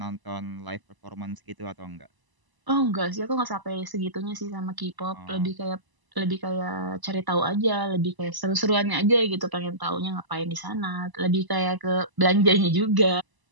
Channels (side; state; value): left; late; 1.0 ms